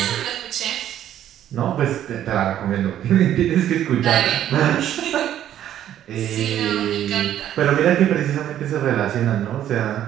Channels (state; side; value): quieter; left; 11.3 dB